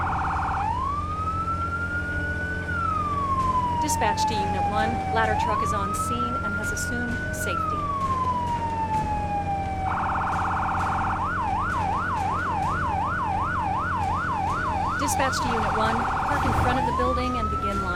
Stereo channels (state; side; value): identical; both; correlation 1.00